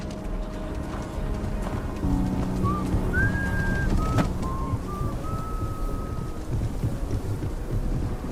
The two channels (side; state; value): both; identical; correlation 1.00